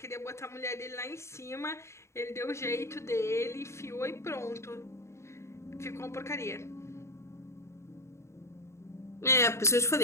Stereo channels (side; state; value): right; late; 0.13 ms